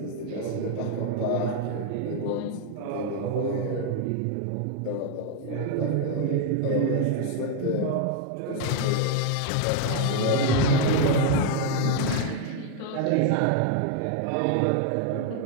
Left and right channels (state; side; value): different; both; correlation 0.00